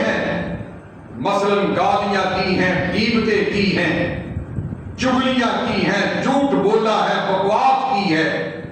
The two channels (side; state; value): both; identical; correlation 1.00